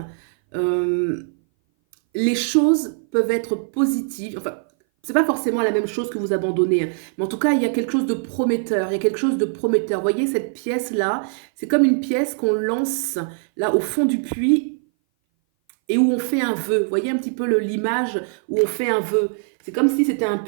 euh, les choses peuvent être positives. Enfin, c'est pas forcément la même chose que vous abandonnez, hein. Mais en tout cas, il y a quelque chose de prometteur. Il y a quelque chose de prometteur. Vous voyez, cette pièce-là, c'est comme une pièce qu'on lance là au fond du puits et où on fait un vœu. Vous voyez un petit peu l'image où on fait un vœu. C'est comme si c'était un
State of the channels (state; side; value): silent; left; 59 dB below the other